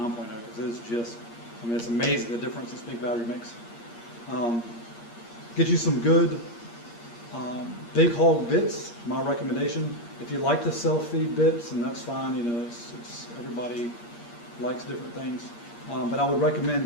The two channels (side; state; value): right; late; 8.6 ms